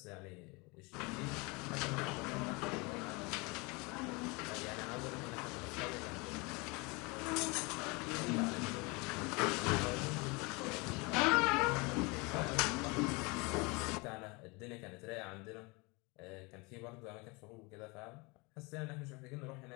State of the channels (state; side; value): quieter; right; 27.5 dB